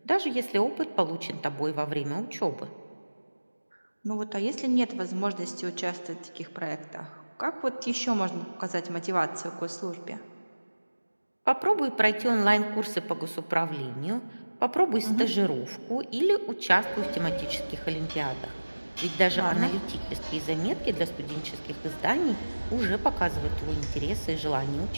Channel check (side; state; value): both; inverted; correlation -1.00